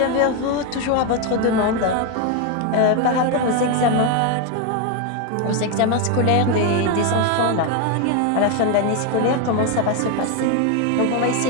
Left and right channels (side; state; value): both; different; correlation 0.02